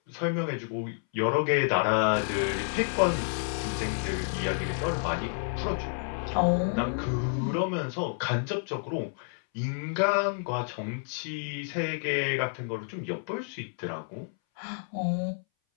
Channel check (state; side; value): silent; right; 58 dB below the other